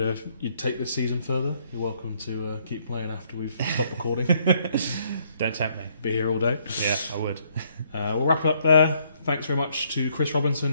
take this season further? You're welcome to keep playing after we've stopped recording. Don't tempt me. Be here all day. Yeah, I would. We'll wrap it up there. Thanks very much to Chris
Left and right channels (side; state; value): both; inverted; correlation -0.69